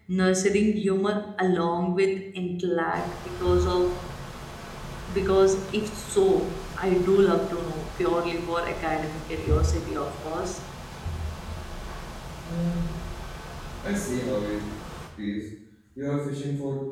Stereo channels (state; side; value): identical; both; correlation 1.00